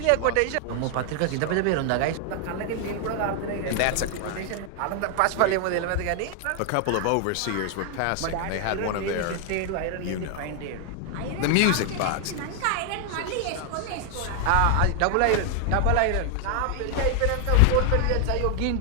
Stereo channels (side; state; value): both; different; correlation 0.00